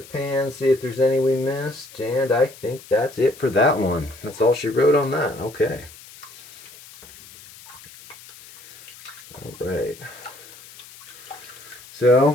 pan, see if there's any we missed. And I think that's it for that one. That's all she wrote on that. Okay. All right.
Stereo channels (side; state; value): left; noise; hiss, 19 dB below the sound